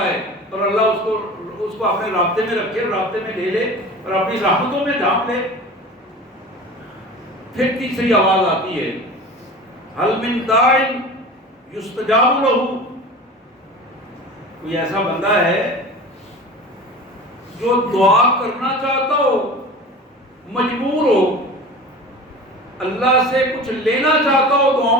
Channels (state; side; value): normal; both; correlation 0.36